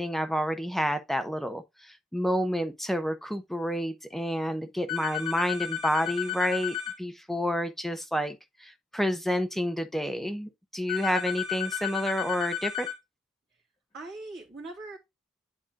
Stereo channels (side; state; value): both; normal; correlation 0.81